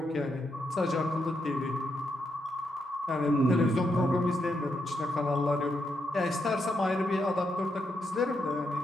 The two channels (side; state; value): both; normal; correlation 0.81